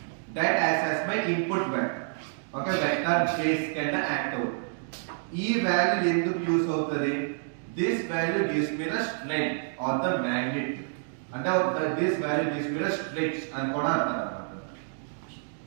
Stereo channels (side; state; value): left; silent; digital silence